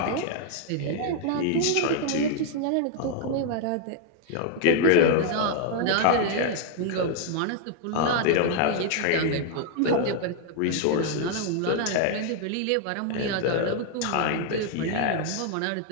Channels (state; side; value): different; both; correlation 0.00